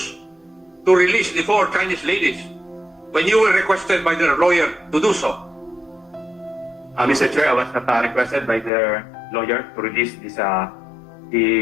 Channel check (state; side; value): drops out; right; at 8.7 s